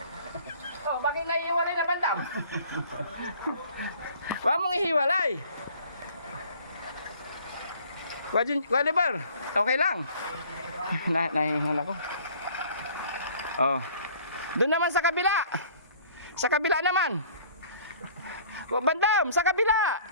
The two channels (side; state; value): both; inverted; correlation -0.52